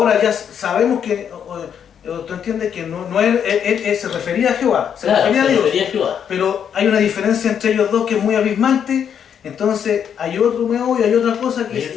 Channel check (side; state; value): right; quieter; 8.2 dB